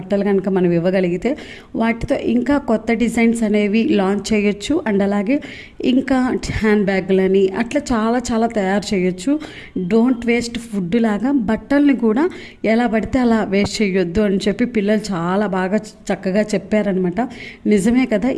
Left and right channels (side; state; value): both; identical; correlation 1.00